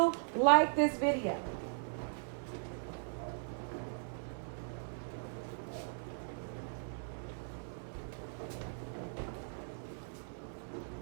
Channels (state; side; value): silent; left; 52 dB below the other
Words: like this video.